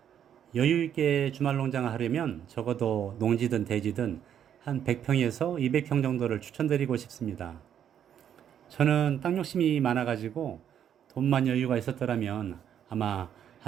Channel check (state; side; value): quieter; left; 9.3 dB